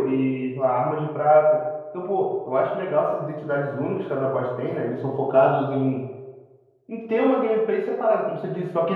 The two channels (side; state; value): both; identical; correlation 1.00